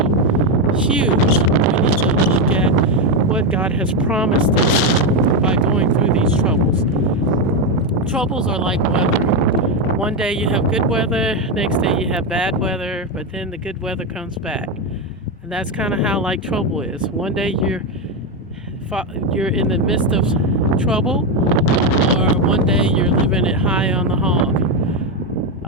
huge, we need to look at what God has promised us by going through these troubles. Troubles are like weather. One day you have good weather, next day you have bad weather, but then the good weather comes back. And that's kind of how like trouble is. One day you're in the midst of trouble, or one day you're living it high on the hog.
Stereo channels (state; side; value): normal; both; correlation 0.08